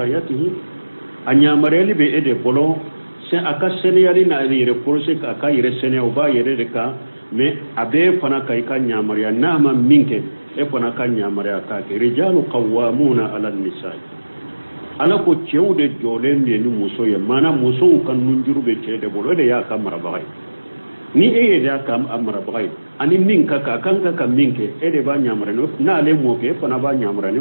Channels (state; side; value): inverted; both; correlation -1.00